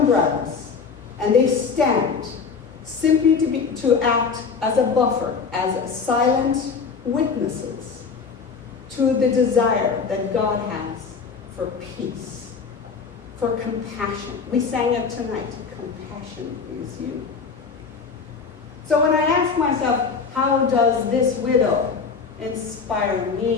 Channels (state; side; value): quieter; right; 5.4 dB